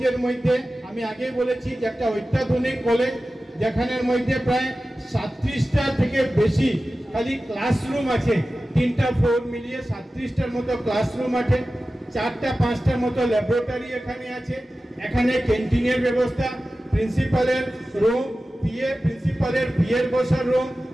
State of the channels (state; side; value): normal; both; correlation 0.95